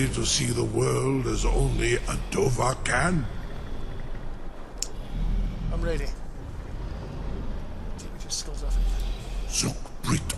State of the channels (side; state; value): both; identical; correlation 1.00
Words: to see the world as only a Dova can? I'm ready. Take me to Skuldafn. Zuk Brit